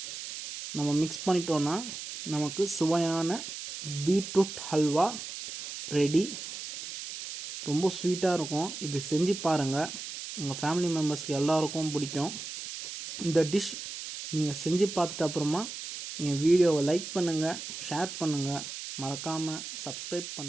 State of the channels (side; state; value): right; noise; hiss, 9 dB below the sound